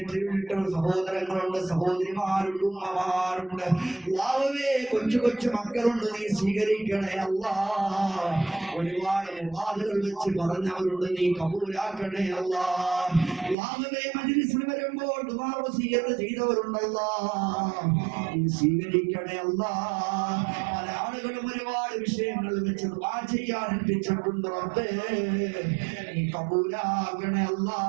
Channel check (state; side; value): drops out; left; at 13.6 s